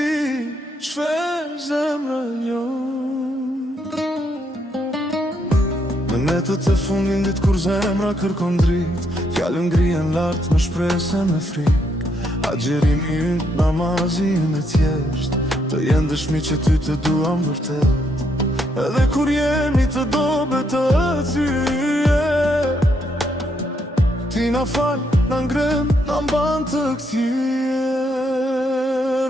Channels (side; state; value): both; normal; correlation 0.75